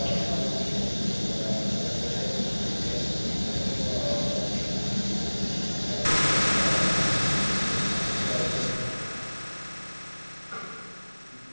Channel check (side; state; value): both; inverted; correlation -1.00